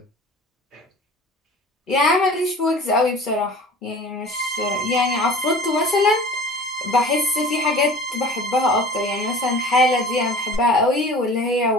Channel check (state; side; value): normal; both; correlation 0.41